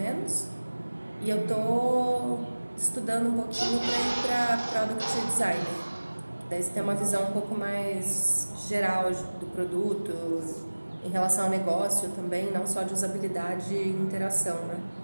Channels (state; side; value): inverted; both; correlation -1.00